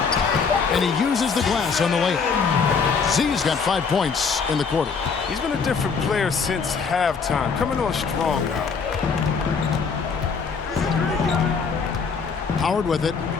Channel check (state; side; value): quieter; right; 5.5 dB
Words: And he uses the glass on the layup. Z's got 5 points in the quarter. He's been a different player since halftime, coming on strong now. Howard with it,